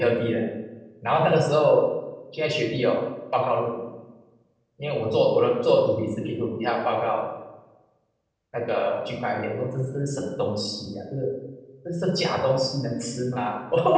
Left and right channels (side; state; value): both; identical; correlation 1.00